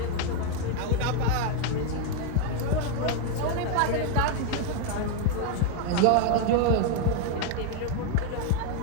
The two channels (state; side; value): different; both; correlation 0.01